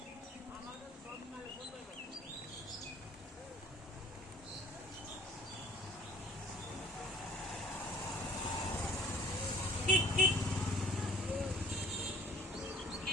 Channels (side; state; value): both; normal; correlation 0.52